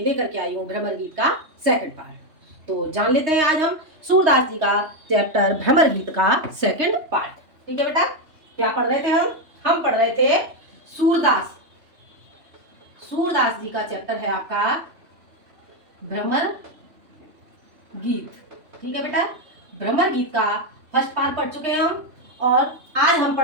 लेकर के आई हूँ भ्रमर गीत का सेकंड पार्ट। तो जान लेते हैं आज हम सूरदास जी का चैप्टर भ्रमर गीत का सेकंड पार्ट। ठीक है बेटा, क्या पढ़ रहे थे हम पढ़ रहे थे सूरदास सूरदास जी का चैप्टर है आपका भ्रमर गीत। ठीक है बेटा, भ्रमर गीत का फर्स्ट पार्ट पढ़ चुके हैं हम और आज हम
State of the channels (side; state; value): left; late; 3.2 ms